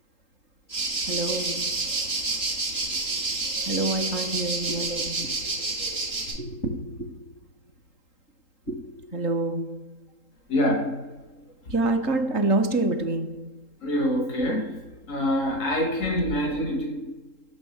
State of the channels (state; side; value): late; right; 3.8 ms